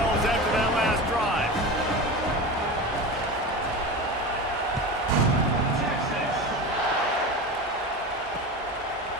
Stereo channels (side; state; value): both; normal; correlation 0.27